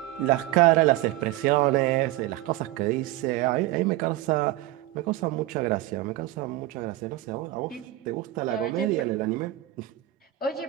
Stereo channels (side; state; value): left; quieter; 15.9 dB